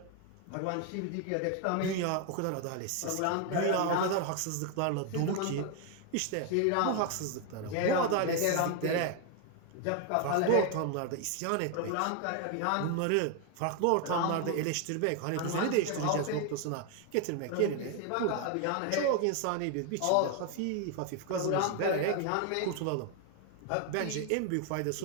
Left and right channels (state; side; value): different; both; correlation 0.01